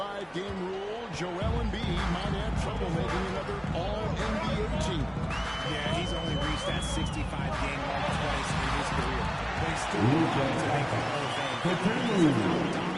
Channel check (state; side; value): identical; both; correlation 1.00